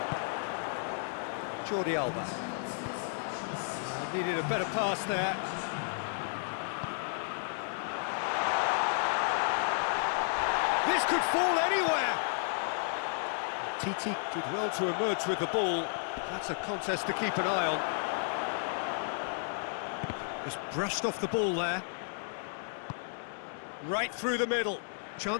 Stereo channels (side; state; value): right; silent; digital silence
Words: Jordi Alba. Needed a better pass there. This could fall anywhere! Titi did well to emerge with the ball. That's a contest to keep an eye on. Just brushed off the ball there. Right through the middle.